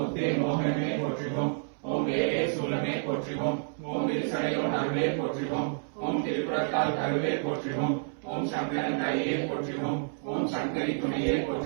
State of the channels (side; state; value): left; silent; 58 dB below the other